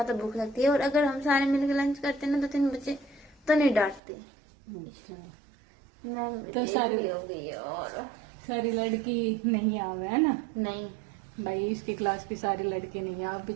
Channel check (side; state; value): left; drops out; at 4.0 s